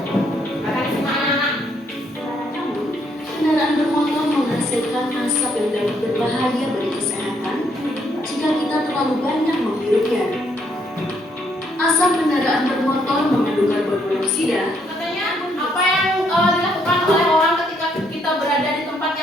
Kendaraan bermotor menghasilkan asap yang dapat berbahaya bagi kesehatan jika kita terlalu banyak menghirupnya. Asap kendaraan bermotor mengandung karbon monoksida. Katanya apa yang dilakukan oleh orang ketika kita berada di tempat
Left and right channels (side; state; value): both; normal; correlation 0.71